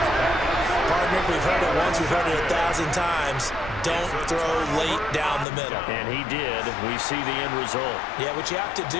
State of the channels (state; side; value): drops out; right; at 5.5 s